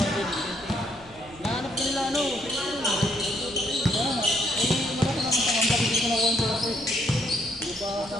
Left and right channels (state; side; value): noise; left; rumble, 24 dB below the sound